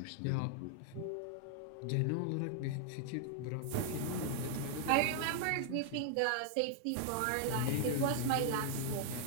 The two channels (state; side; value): different; both; correlation 0.00